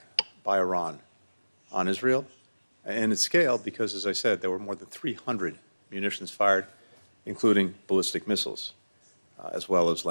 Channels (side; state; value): both; inverted; correlation -1.00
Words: by Iran on Israel, and its scale because, as I said, there were more than 300 munitions fired, including ballistic missiles, as well as